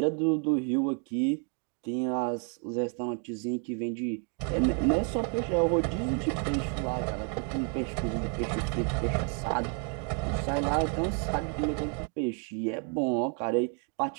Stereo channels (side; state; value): left; quieter; 37.5 dB